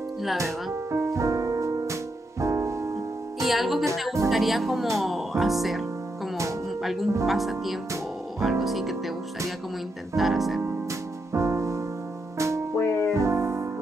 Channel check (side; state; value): both; normal; correlation 0.82